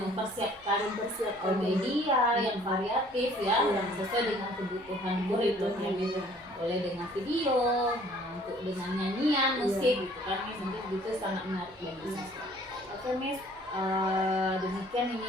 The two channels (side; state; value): both; normal; correlation 0.56